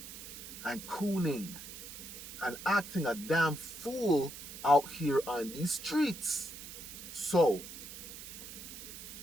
and cooning and acting a damn fool out here on these streets. So,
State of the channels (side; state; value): right; noise; hiss, 11 dB below the sound